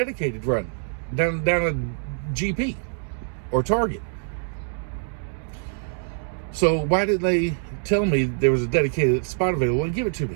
run down a GP or Target. So why didn't they tell me there was a dedicated spot available and give it to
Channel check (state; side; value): silent; left; digital silence